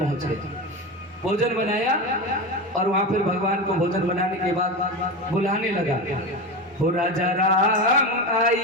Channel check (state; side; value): normal; both; correlation 0.22